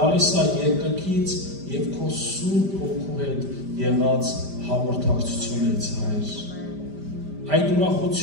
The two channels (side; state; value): left; late; 5.0 ms